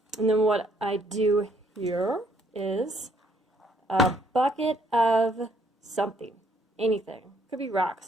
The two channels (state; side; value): normal; both; correlation 0.67